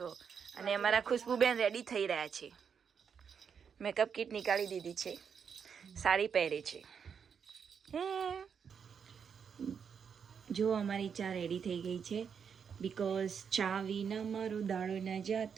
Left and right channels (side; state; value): left; quieter; 6.9 dB